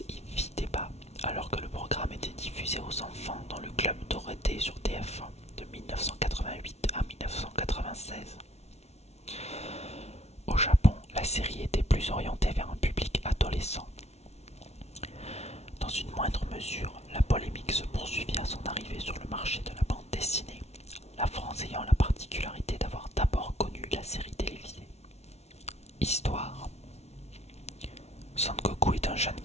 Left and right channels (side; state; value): right; late; 0.31 ms